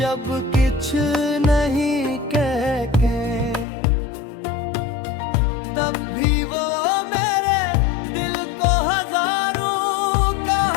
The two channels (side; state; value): right; drops out; at 3.7 s